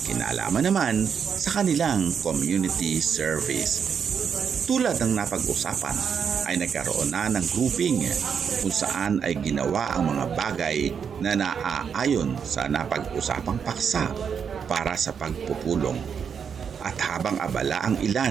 kinalaman naman sa kanilang community service. Tulad ng napag-usapan ay nagkaroon na ng grouping kung saan ay ginawa ang mga bagay na naaayon sa napag-usapang paksa para sa pagpupulong. At habang abala ang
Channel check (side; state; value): left; quieter; 7.0 dB